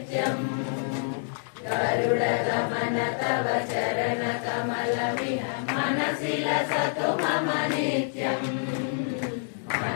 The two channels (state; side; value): silent; right; digital silence